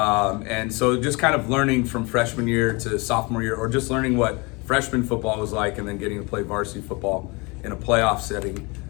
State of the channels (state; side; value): quieter; right; 27.7 dB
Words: And so just kind of learning from freshman year to sophomore year, or just learning what freshman football was like and then getting to play varsity football in a playoff setting,